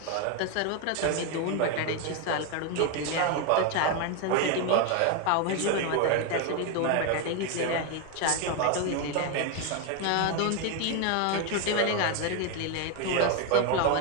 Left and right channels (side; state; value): both; different; correlation 0.02